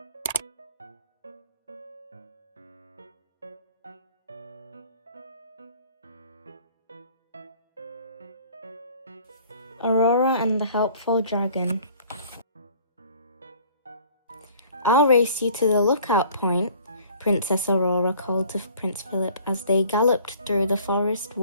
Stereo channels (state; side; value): inverted; both; correlation -0.52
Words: Aurora and the Helpful Dragon. "I'll race you to the lookout point," Princess Aurora called to Prince Philip as they galloped through the forest